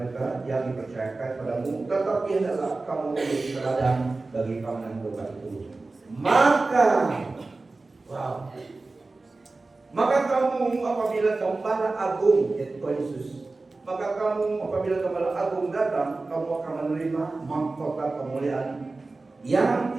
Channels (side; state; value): left; quieter; 3.5 dB